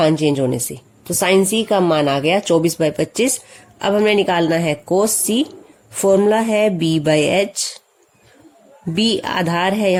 चेंज होने से। तो साइन C का मान आ गया 24/25। अब हमें निकालना है कोस C। फॉर्मूला है B/H। B आधार है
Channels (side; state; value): both; identical; correlation 1.00